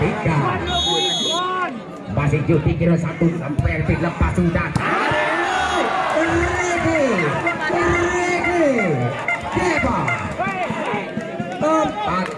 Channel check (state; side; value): identical; both; correlation 1.00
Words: masih Yudi Giron satu sampai lepas sudah Deva